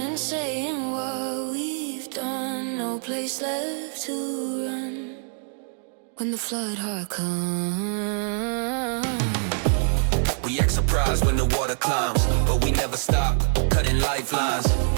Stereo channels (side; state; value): left; silent; 62 dB below the other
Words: saying what we've done. No place left to run when the flood heart comes. We act surprised when the water climbs, but we never stop, cutting lifelines.